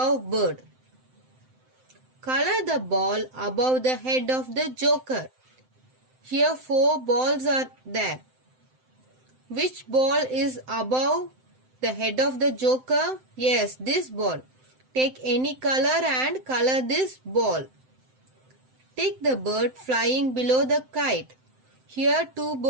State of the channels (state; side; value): late; left; 7.8 ms